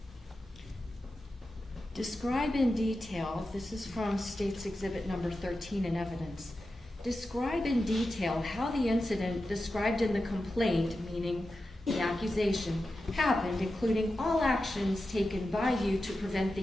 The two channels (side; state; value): both; normal; correlation 0.91